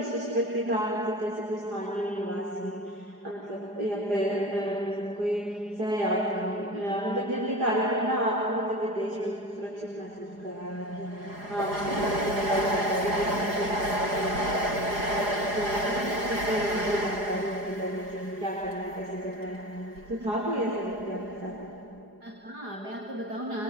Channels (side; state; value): left; late; 4.9 ms